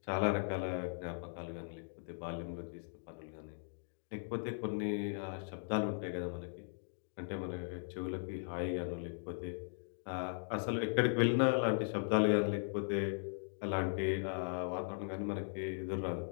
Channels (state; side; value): silent; right; digital silence